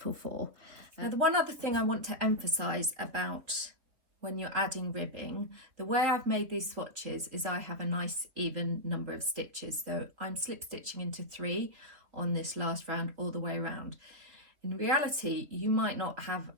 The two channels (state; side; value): late; left; 3.5 ms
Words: for. Now, the one other thing I want to emphasize about when you're adding ribbing, the way I've made these swatches is I have a nice even number of stitches. So I'm slip stitching into 3 on this last round all the way around. In reality, you might not have